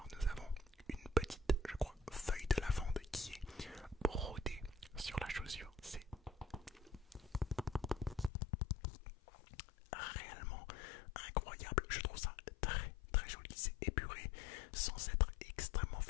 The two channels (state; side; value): drops out; right; at 8.3 s